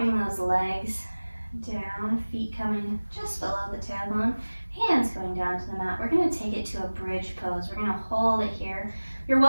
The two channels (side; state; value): both; inverted; correlation -1.00